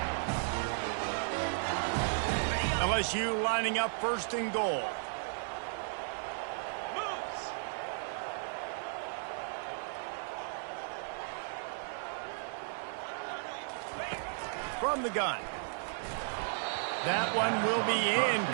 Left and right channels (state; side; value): silent; left; 55 dB below the other